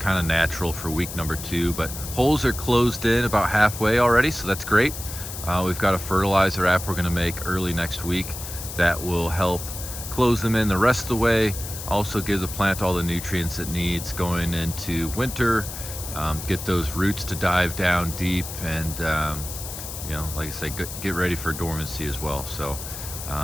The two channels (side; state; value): left; noise; hiss, 9 dB below the sound